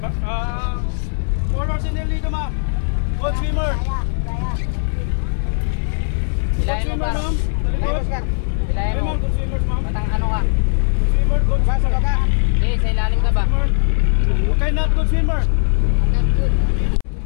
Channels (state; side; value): silent; right; 67 dB below the other